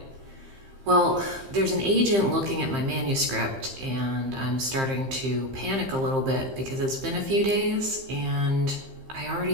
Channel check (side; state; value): left; late; 15 ms